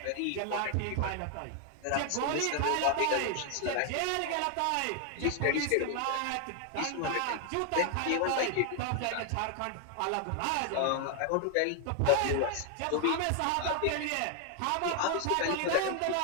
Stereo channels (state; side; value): different; both; correlation 0.00